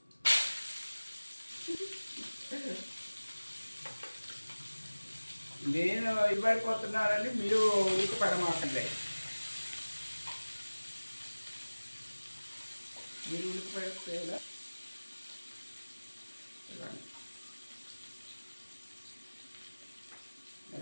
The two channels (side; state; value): both; inverted; correlation -1.00